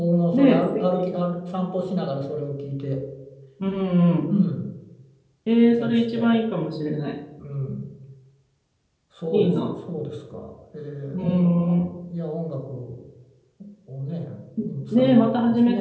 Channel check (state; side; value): identical; both; correlation 1.00